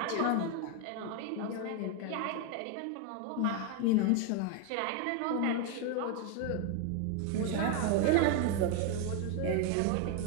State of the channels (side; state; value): both; different; correlation 0.01